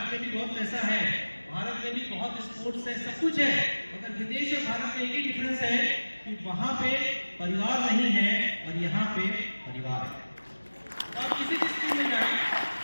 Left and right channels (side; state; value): both; inverted; correlation -1.00